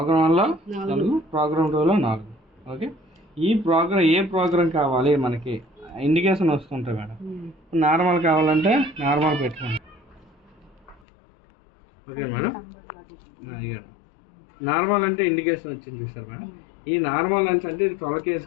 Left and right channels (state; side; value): drops out; right; at 11.0 s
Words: 1లో 4, ప్రోగ్రామ్ 2లో 4. ఓకే, ఈ ప్రోగ్రామ్ ఏ ప్రోగ్రామ్ కావాలి మనకి ఇండికేషన్ వస్తుంటాయి మేడం. నార్మల్ కావాలంటే నార్మల్ పెట్టుకోండి. ఓకే మేడం, ఇవ్వండి. నార్మల్ అంటే ఇండికేషన్ వచ్చింది చూసారు మేడం. ఈ నార్మల్ లెన్స్ అంటే ఇది 12 కేజీ